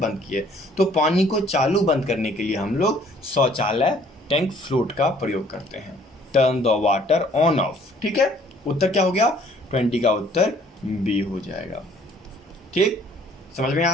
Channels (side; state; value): both; normal; correlation 0.59